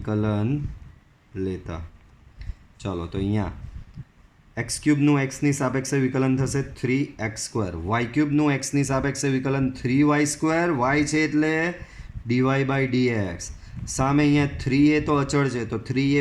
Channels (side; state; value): both; identical; correlation 1.00